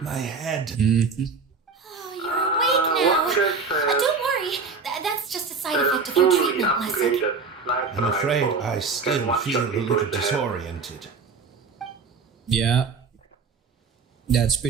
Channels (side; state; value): left; quieter; 4.8 dB